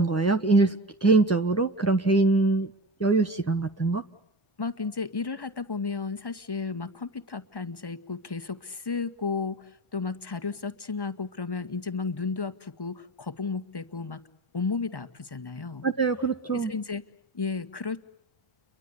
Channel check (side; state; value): right; late; 1.1 ms